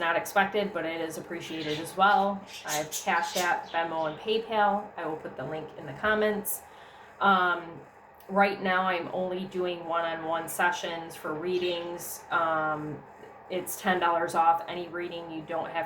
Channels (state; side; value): identical; both; correlation 1.00